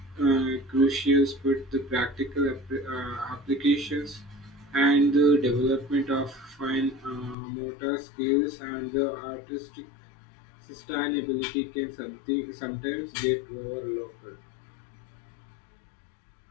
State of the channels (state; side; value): drops out; right; at 7.4 s